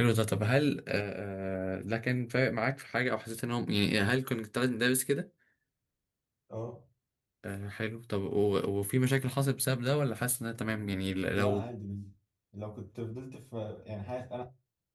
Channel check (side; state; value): both; identical; correlation 1.00